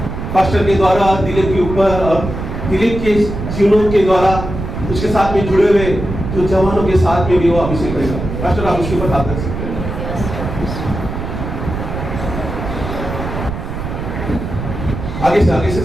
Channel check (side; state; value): right; noise; rumble, 6 dB below the sound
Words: पास्टर के द्वारा दिलीप के ऊपर और दिलीप के जीवनों के द्वारा उसके साथ में जुड़े हुए जो जवानों के साथ में भी वो अभिषेक रहेगा। पास्टर आप उसके ऊपर हाथ रख सकते हैं। आगे से